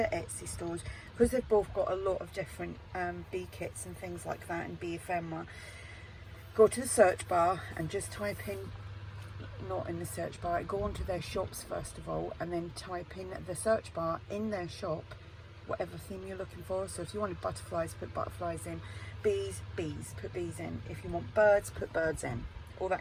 Etsy stores, because they've both got a lot of different bee kits and things like that, and bee ephemera, go to the search bar and just type in, not in the search bar, go onto their shops first of all, and then type in the search bar in their shop whatever theme you're looking for. So if you wanted butterflies, put butterflies in. Bees, bees, put bees in. If you want birds, put birds in. All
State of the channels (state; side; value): identical; both; correlation 1.00